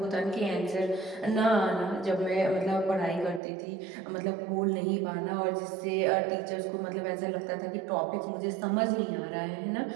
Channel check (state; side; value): drops out; left; at 3.4 s